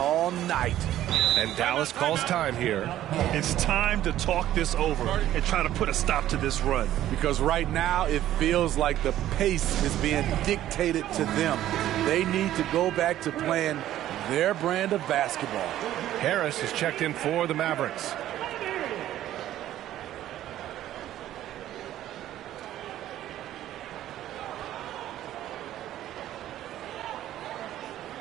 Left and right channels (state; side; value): quieter; left; 12.9 dB